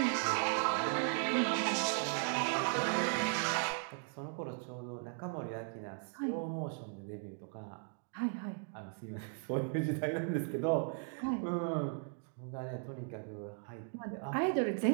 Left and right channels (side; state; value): left; silent; 53 dB below the other